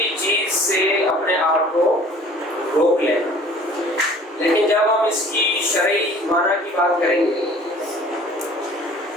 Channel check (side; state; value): both; normal; correlation 0.49